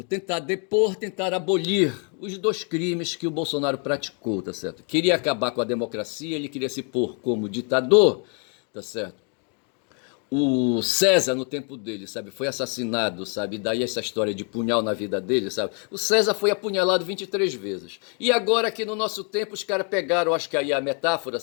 tentar depor, tentar abolir. Os dois crimes que o Bolsonaro praticou, tá certo? Queria acabar com a democracia, ele queria se pôr como ditador, tá certo? O César, no tempo dele, sabe, foi assassinado, sabe, daí essa história de punhal na vida dele, sabe, o César foi apunhalado 23 vezes, e agora aqui no nosso tempo os caras pegaram, acho que aí a metáfora,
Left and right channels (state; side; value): quieter; right; 39.0 dB